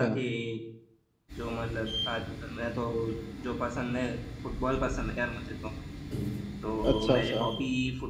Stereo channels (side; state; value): both; identical; correlation 1.00